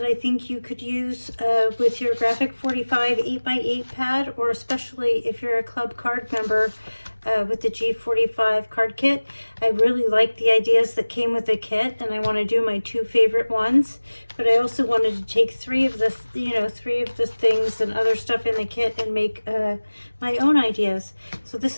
I think you could use with your Graphic 45 8x8 pad, or especially if you're a club card member with the G45 card kit. I really like the ideas that came with the kit, and I want to do my two favorite ones. But I also wanted to take three of the things and other stuff in the kit and make my own ideas. So this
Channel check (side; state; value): both; inverted; correlation -1.00